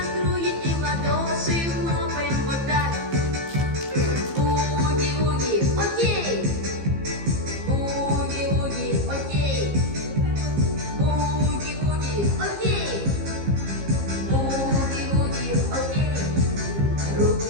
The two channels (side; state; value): left; late; 15 ms